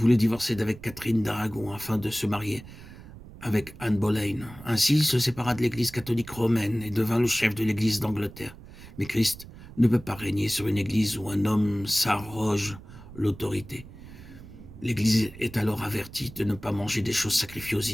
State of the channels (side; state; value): right; noise; rumble, 17 dB below the sound